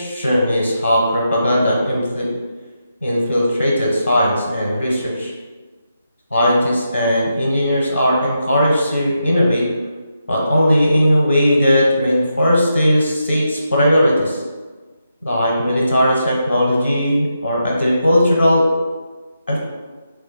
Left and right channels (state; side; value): inverted; both; correlation -0.84